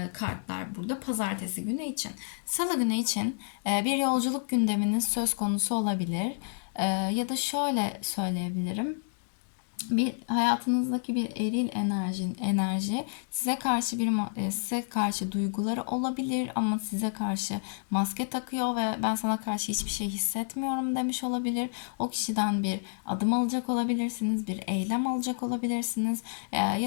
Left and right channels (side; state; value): right; silent; digital silence